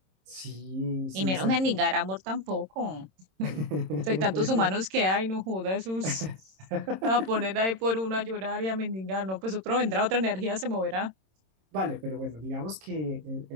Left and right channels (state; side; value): late; left; 26 ms